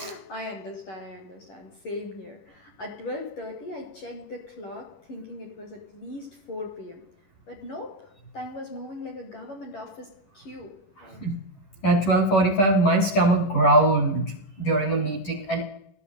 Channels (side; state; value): right; late; 11 ms